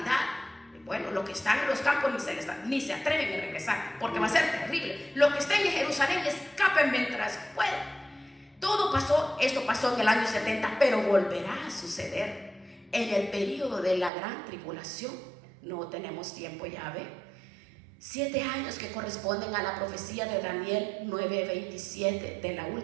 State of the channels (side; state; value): left; drops out; at 14.1 s